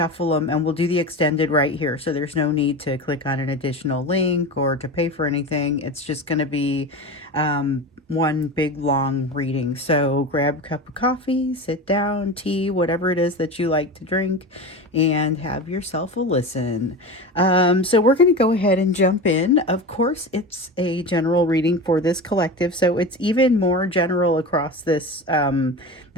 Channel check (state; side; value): normal; both; correlation 0.27